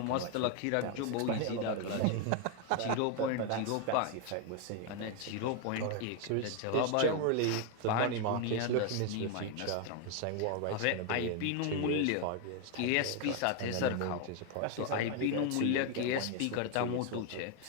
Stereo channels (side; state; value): both; different; correlation 0.01